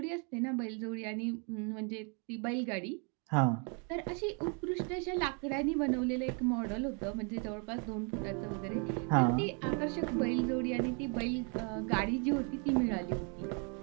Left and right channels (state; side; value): quieter; left; 36.5 dB